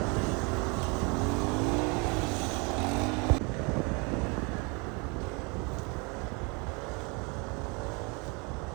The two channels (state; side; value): quieter; left; 30.6 dB